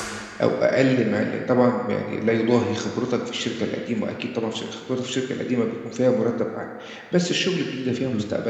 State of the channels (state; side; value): identical; both; correlation 1.00